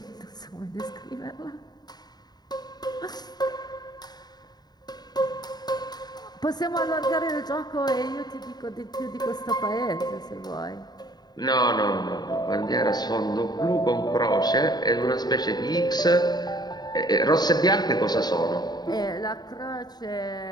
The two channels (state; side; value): late; right; 0.20 ms